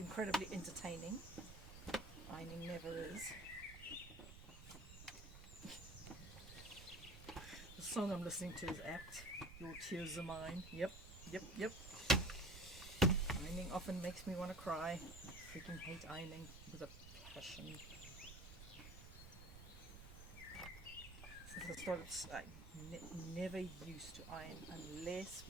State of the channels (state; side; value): noise; right; rumble, 13 dB below the sound